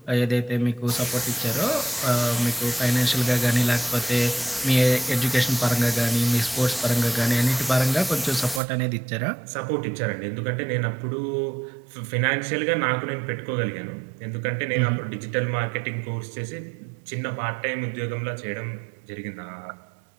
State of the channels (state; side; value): drops out; left; at 8.6 s